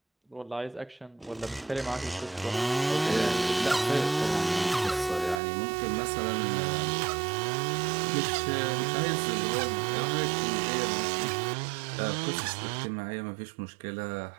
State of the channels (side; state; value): left; drops out; at 5.4 s